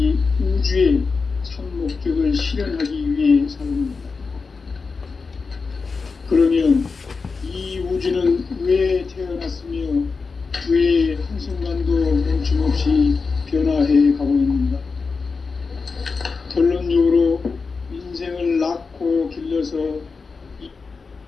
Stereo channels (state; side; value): quieter; right; 4.6 dB